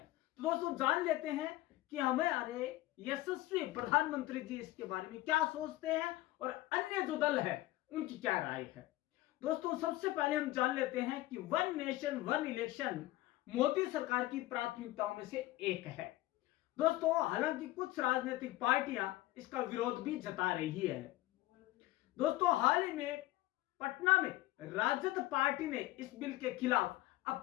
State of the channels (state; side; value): quieter; right; 17.2 dB